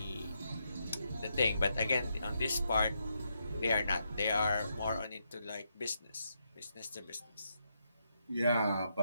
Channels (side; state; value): both; inverted; correlation -0.80